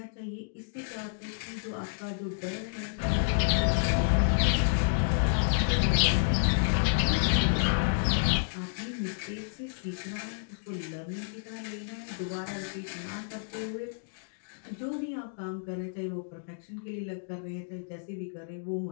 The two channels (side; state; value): right; silent; digital silence